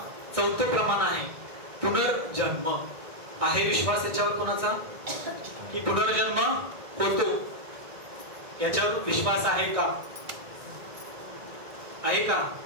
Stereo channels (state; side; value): late; left; 1.6 ms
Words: 4थं प्रमाण आहे पुनर्जन्म. आहे विश्वास याच्यावर कोणाचा की पुनर्जन्म होतो, याच्यावर विश्वास आहे का? आहे का?